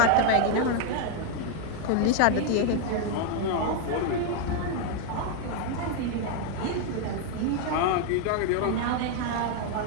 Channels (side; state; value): both; different; correlation 0.01